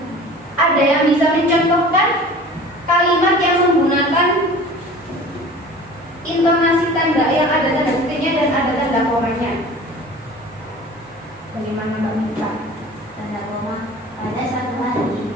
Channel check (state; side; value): normal; both; correlation 0.42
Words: Ada yang bisa mencontohkan kalimat yang menggunakan intonasi tanda yang ada tanda titiknya dan ada tanda komanya? Bagaimana Mbak Mita? Tanda koma pada satu hari.